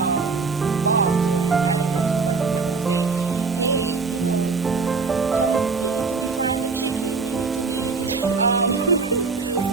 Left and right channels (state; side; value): quieter; left; 4.6 dB